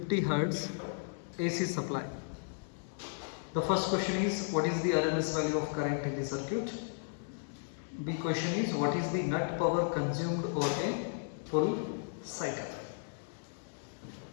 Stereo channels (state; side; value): silent; right; digital silence